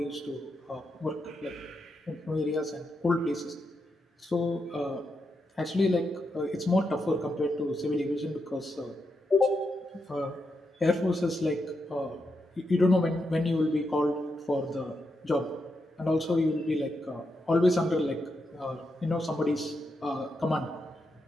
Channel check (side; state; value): both; normal; correlation 0.84